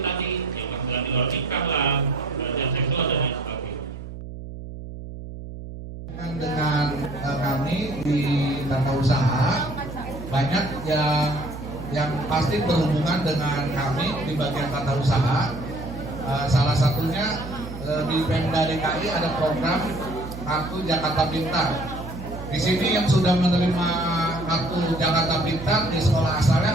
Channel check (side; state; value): right; noise; hum, 11 dB below the sound